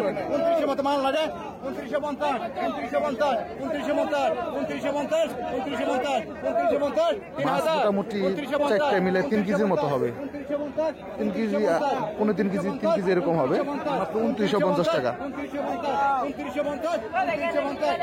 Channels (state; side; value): identical; both; correlation 1.00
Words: মাল লাগে 2950, 2950, 2950, 2950, 2950, 2950, মাছ 3000, মোটামুটি 4টে মিলে 3 কেজির মতো হবে। 3 কেজি 3.5 কেজি 3 কেজি এরকম হবে মাত্র 2950 টাকা।